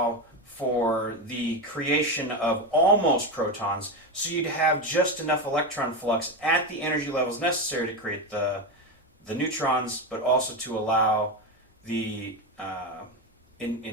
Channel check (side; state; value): both; normal; correlation 0.15